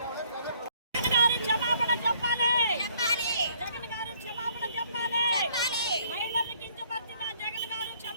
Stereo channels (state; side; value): inverted; both; correlation -0.62